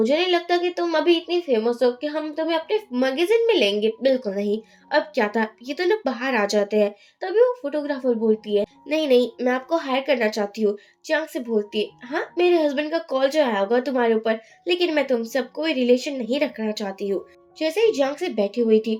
नहीं लगता कि तुम अभी इतनी फेमस हो कि हम तुम्हें अपने मैगजीन में लेंगे, बिल्कुल नहीं। अब क्या था, ये तो ना बाहर आ जाते हैं। तभी वो फोटोग्राफर बोलती है, नहीं नहीं मैं आपको हायर करना चाहती हूँ। जियांग से बोलती है, हाँ मेरे हस्बैंड का कॉल जो आया होगा तुम्हारे ऊपर, लेकिन मैं तुमसे अब कोई रिलेशन नहीं रखना चाहती हूँ। जैसे ही जियांग से बैठी हुई थी,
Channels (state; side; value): identical; both; correlation 1.00